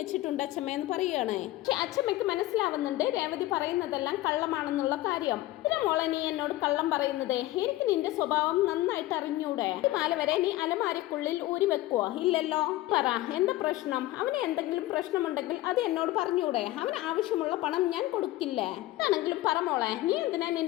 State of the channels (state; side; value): quieter; right; 16.7 dB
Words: അച്ഛമ്മ എന്ന് പറയുകയാണ്. പക്ഷെ അച്ഛമ്മയ്ക്ക് മനസ്സിലാവുന്നുണ്ട് രേവതി പറയുന്നതെല്ലാം കള്ളമാണെന്നുള്ള കാര്യം. ഇതിനെ മോളെ നീ എന്നോട് കള്ളം പറയുന്നത്? എനിക്ക് നിന്റെ സ്വഭാവം നന്നായിട്ട് അറിഞ്ഞൂടെ? ഈ മാല വരെ നീ അലമാരക്കുള്ളിൽ ഊരി വെക്കുവോ? ഇല്ലല്ലോ. പറ എന്താ പ്രശ്നം? അവന് എന്തെങ്കിലും പ്രശ്നമുണ്ടെങ്കിൽ അത് എന്നോട് പറഞ്ഞൂടെ? അവന് ആവശ്യമുള്ള പണം ഞാൻ കൊടുക്കില്ല. ആണെങ്കിലും പറമോളെ, നീ എന്തിനാ